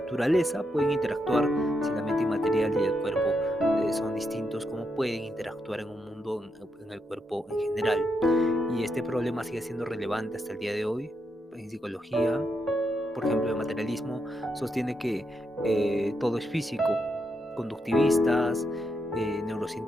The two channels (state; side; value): normal; both; correlation 0.82